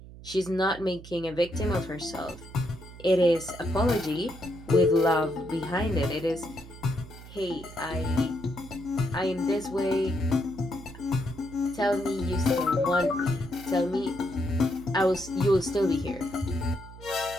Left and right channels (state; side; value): noise; right; hum, 16 dB below the sound